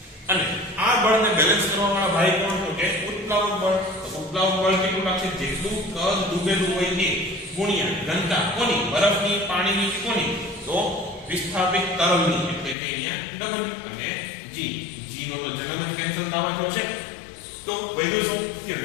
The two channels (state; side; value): drops out; right; at 12.8 s